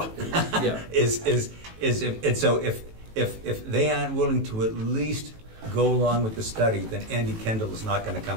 Yeah. Is if, and so if they aren't willing to at least go along with the study, then Andy Kendall is not gonna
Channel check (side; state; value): left; late; 18 ms